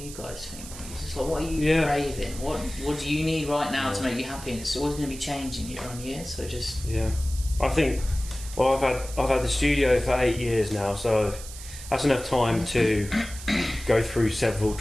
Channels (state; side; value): noise; right; hiss, 13 dB below the sound